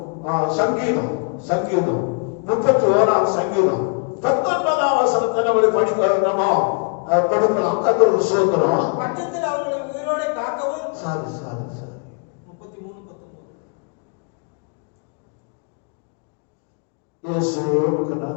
சங்கீதம் 31ஆம் சங்கீதம் 19ஆம் வசனத்தை நம்மளை படிக்கிறோமோ கொடுக்கலாம். கர்த்தருக்கு ஸ்தோத்திரம். பட்சத்தில் அவர்களுக்கு உயிரோடே காக்கவும். சாரி 33:19 இயேசுவுக்கு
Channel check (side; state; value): right; quieter; 39.8 dB